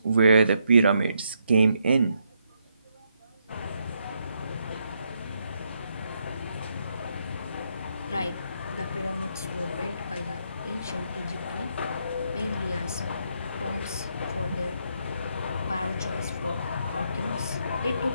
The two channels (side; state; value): both; inverted; correlation -0.77